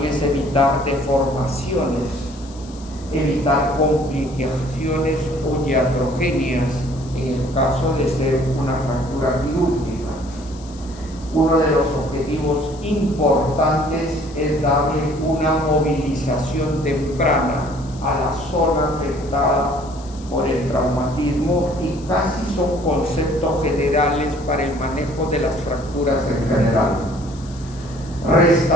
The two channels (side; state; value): left; noise; hiss, 22 dB below the sound